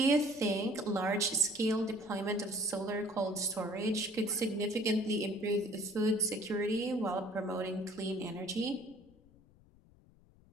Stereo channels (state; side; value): noise; left; rumble, 27 dB below the sound